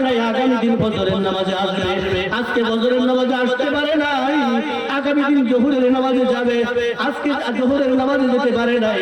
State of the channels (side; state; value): both; identical; correlation 1.00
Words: নাই, আগামী দিন ফজরের নামাজে আসবে, আজকে ফজরের নামাজে আসতে পারে নাই, আগামী দিন যোহরের নামাজে যাবে, আজকে যোহরের নামাজে যেতে পারে নাই।